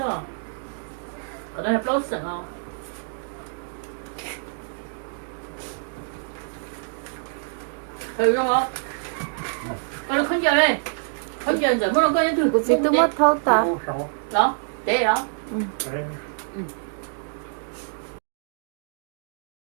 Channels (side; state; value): left; silent; 61 dB below the other